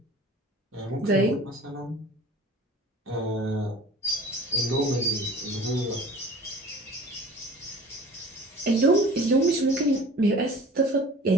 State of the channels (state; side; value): normal; both; correlation 0.45